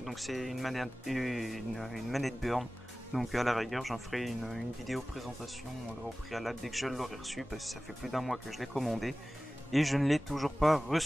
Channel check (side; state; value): both; normal; correlation 0.97